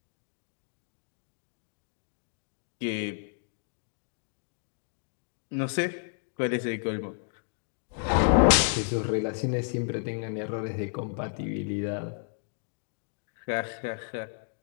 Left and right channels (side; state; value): right; silent; digital silence